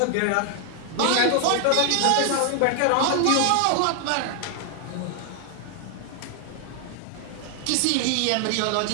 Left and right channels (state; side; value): different; both; correlation 0.00